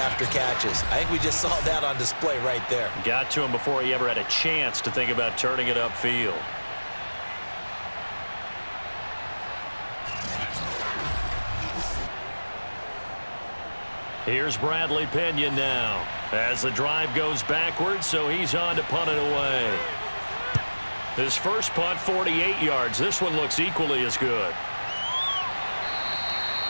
after catches. I think we just saw that on display right there. Got to him before he ever had a chance to think about turning it upfield. Here's Bradley Pinion now as the drive goes backwards, so he's on to punt it away. His first punt, 48 yards. This one looks equally as good.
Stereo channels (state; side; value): inverted; both; correlation -1.00